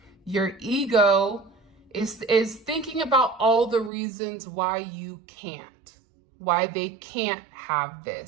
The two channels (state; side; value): drops out; left; at 3.9 s